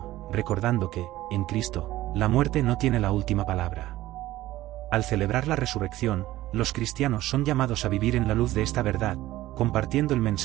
recordando que, en Cristo, la muerte no tiene la última palabra. Al celebrar la resurrección, los cristianos son llamados a vivir en la luz de esta verdad, compartiendo el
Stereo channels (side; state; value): left; quieter; 16.0 dB